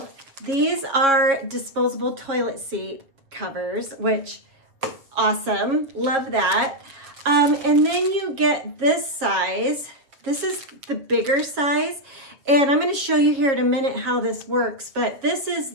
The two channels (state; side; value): late; left; 7.3 ms